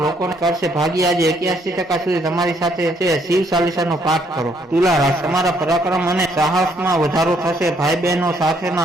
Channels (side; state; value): both; normal; correlation 0.69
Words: લોકોને કરશે. ભાગ્ય આજે 81% સુધી તમારી સાથે છે. શિવ ચાલીસાનો પાઠ કરો. તુલા રાશિ, તમારા પરાક્રમ અને સાહસમાં વધારો થશે. ભાઈ બહેનો